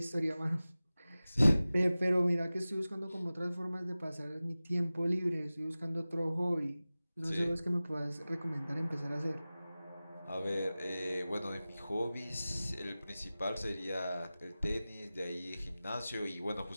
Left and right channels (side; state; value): both; inverted; correlation -0.97